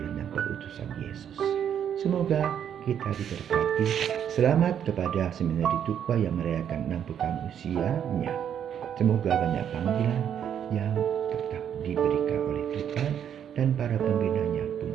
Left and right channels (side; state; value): left; quieter; 9.0 dB